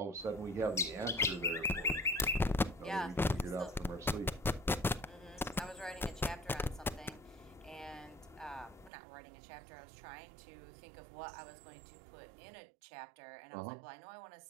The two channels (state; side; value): drops out; left; at 8.9 s